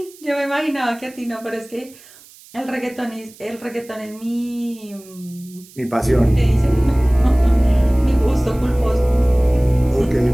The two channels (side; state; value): right; noise; hiss, 23 dB below the sound